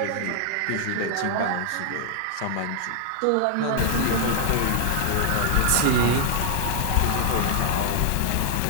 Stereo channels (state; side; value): different; both; correlation 0.00